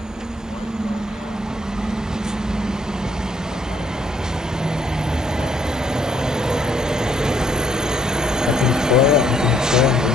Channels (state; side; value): normal; both; correlation 0.69